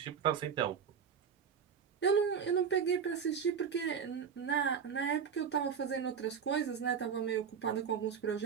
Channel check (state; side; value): quieter; left; 7.0 dB